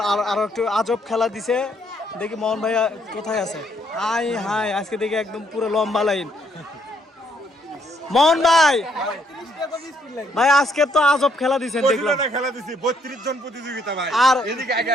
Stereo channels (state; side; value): normal; both; correlation 0.70